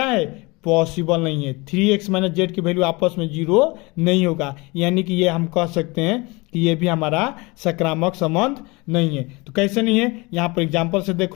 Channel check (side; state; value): right; quieter; 25.2 dB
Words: है, पॉसिबल नहीं है। 3x माइनस जेड की वैल्यू आपस में 0 नहीं होगा, यानी कि ये हम कह सकते हैं कि ये भी हमारा सक्रामक संबंध नहीं है। तो कैसे नहीं है, यहाँ पर एग्जांपल से